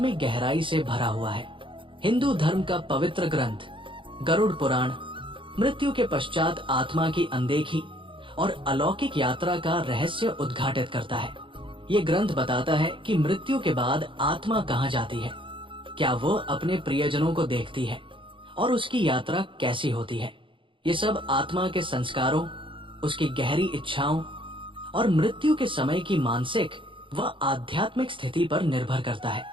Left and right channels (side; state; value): left; late; 0.25 ms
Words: गहराई से भरा हुआ है। हिंदू धर्म का पवित्र ग्रंथ गरुड़ पुराण मृत्यु के पश्चात आत्मा की अनदेखी और अलौकिक यात्रा का रहस्य उद्घाटित करता है। ये ग्रंथ बताता है कि मृत्यु के बाद आत्मा कहाँ जाती है, क्या वो अपने प्रियजनों को देखती है और उसकी यात्रा कैसी होती है। ये सब आत्मा के संस्कारों, उसकी गहरी इच्छाओं और मृत्यु के समय की मानसिक व आध्यात्मिक स्थिति पर निर्भर करता